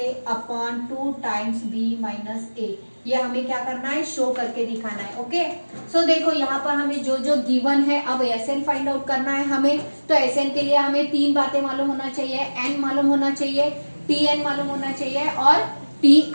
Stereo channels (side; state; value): both; inverted; correlation -1.00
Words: upon 2 times B minus A. ये हमें क्या करना है, शो करके दिखाना है। ओके, सो देखो यहाँ पर हमें जो जो गिवन है, अब एस एन फाइंड आउट करना है हमें। तो एस एन के लिए हमें 3 बातें मालूम होना चाहिए, एन मालूम होना चाहिए, टी एन मालूम होना चाहिए और टी